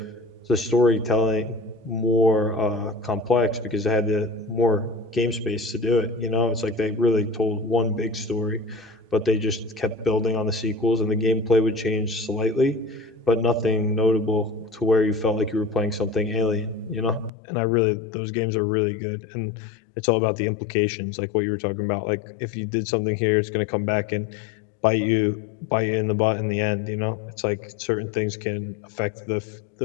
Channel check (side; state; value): right; drops out; at 17.3 s